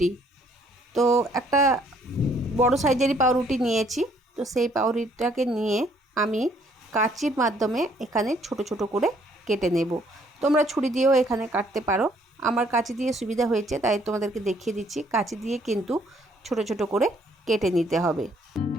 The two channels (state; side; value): normal; both; correlation 0.65